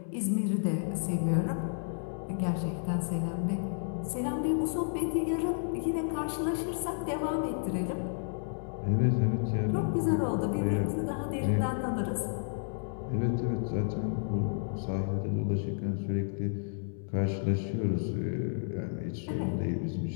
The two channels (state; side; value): silent; right; digital silence